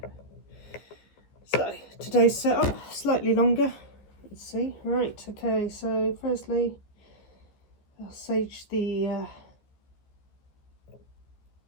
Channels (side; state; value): right; late; 14 ms